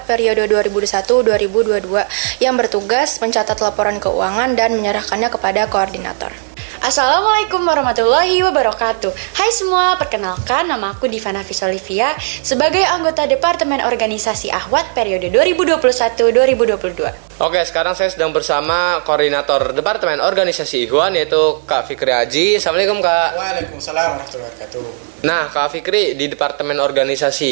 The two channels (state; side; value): silent; left; digital silence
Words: periode 2021-2022 yang bertugas mencatat laporan keuangan dan menyerahkannya kepada koordinator. Assalamualaikum warahmatullahi wabarakatuh. Hai semua, perkenalkan nama aku Diva Nafis Olivia sebagai anggota Departemen Organisasi Akhwat periode 2021-2022. Oke, sekarang saya sedang bersama Koordinator Departemen Organisasi Ikhwan yaitu Kak Fikri Haji. Assalamualaikum Kak. Waalaikumsalam warahmatullahi wabarakatuh. Nah Kak Fikri, di Departemen